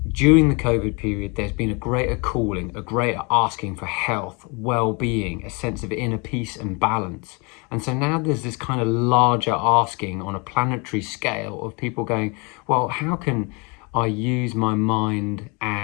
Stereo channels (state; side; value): quieter; right; 30.4 dB